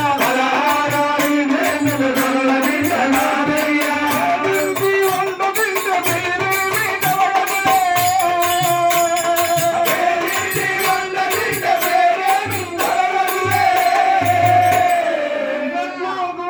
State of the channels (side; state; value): both; identical; correlation 1.00